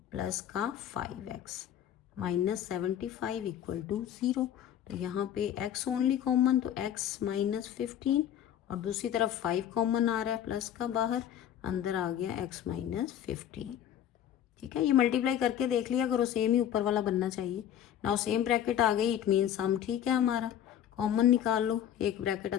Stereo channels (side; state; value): right; quieter; 10.3 dB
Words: प्लस का 5x माइनस 75 इक्वल टू 0। तो यहाँ पे x ओनली कॉमन, तो x माइनस 15 और दूसरी तरफ 5 कॉमन आ रहा है प्लस का बाहर, अंदर आ गया x माइनस 15। ठीक है, ये मल्टीप्लाई करके देख लिया करो, सेम ही ऊपर वाला बनना चाहिए। नाउ सेम ब्रैकेट आ गई, इट मीन सम ठीक है हमारा, कॉमन निकाल लो। एक ब्रैकेट